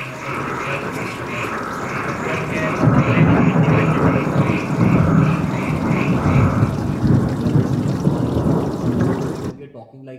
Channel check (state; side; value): identical; both; correlation 1.00